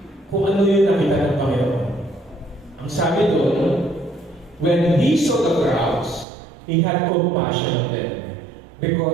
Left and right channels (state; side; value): drops out; left; at 6.2 s